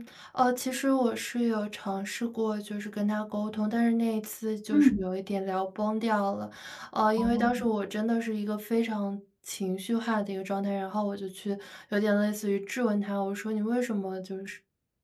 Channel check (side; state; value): both; identical; correlation 1.00